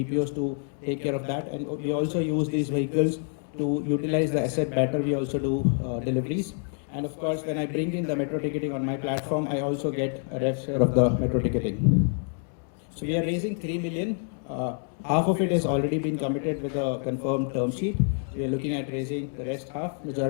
to take care of that, and we also use these vehicles to utilize the asset better. We also do deliveries. And of course, when I bring in the metro ticketing on my platform, I also get a rev share of the metro ticketing. So we are raising 3 million. Half of it has already been committed with a confirmed term sheet. We are looking at raising the rest half.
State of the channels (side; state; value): right; silent; 56 dB below the other